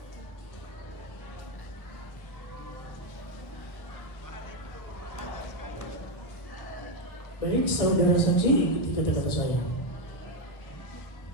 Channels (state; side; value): late; right; 1.2 ms